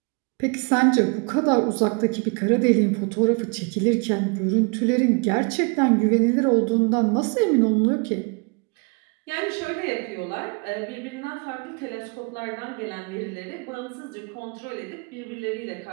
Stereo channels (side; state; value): left; quieter; 33.3 dB